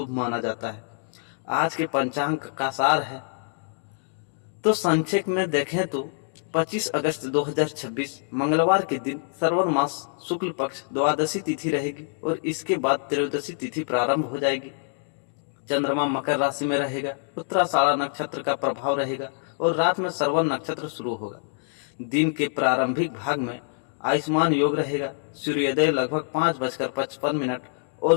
माना जाता है। आज के पंचांग का सार है तो संक्षेप में देखें तो 25 अगस्त 2026 मंगलवार के दिन श्रवण मास शुक्ल पक्ष द्वादशी तिथि रहेगी और इसके बाद त्रयोदशी तिथि प्रारंभ हो जाएगी। चंद्रमा मकर राशि में रहेगा, उत्तराषाढ़ा नक्षत्र का प्रभाव रहेगा और रात में श्रवण नक्षत्र शुरू होगा। दिन के प्रारंभिक भाग में आयुष्मान योग रहेगा। सूर्योदय लगभग 5:55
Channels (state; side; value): silent; right; digital silence